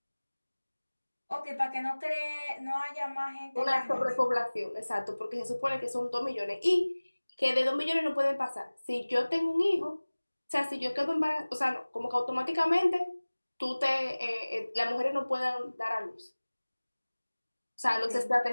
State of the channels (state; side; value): inverted; both; correlation -1.00